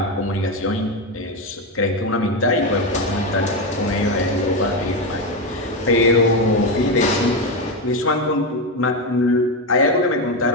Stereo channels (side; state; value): both; normal; correlation 0.11